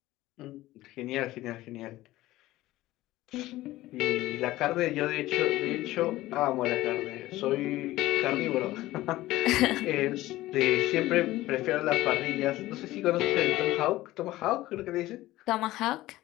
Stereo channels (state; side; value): quieter; right; 16.8 dB